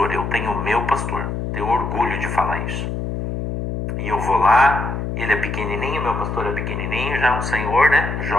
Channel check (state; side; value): noise; left; hum, 4 dB below the sound